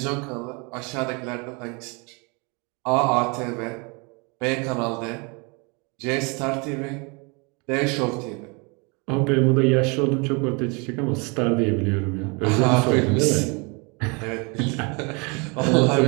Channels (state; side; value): quieter; left; 30.9 dB